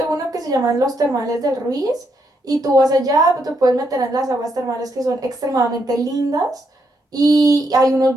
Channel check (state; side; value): normal; both; correlation 0.78